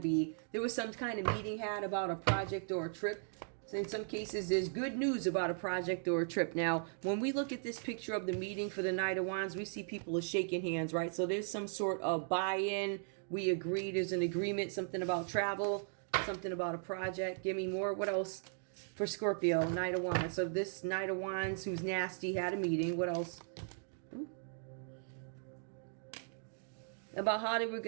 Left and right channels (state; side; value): silent; left; digital silence